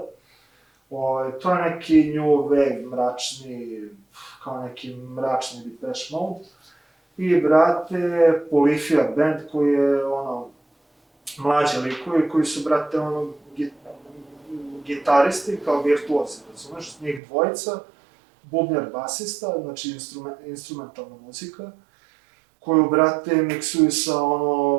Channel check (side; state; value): left; drops out; at 17.2 s